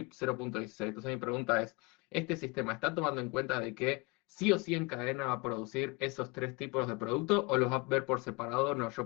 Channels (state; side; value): quieter; right; 26.8 dB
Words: 0.16. Entonces mi pregunta es, ¿este sistema está tomando en cuenta de que sí o sí en cadena va a producir esos tres tipos de productos o los va a ver por separado? No,